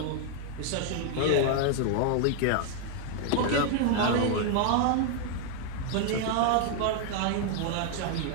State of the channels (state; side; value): different; both; correlation 0.00